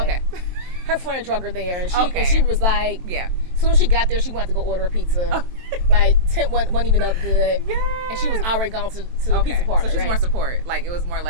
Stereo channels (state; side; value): late; left; 23 ms